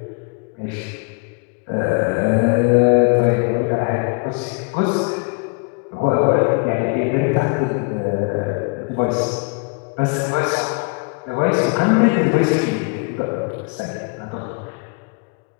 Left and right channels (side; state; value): right; quieter; 33.3 dB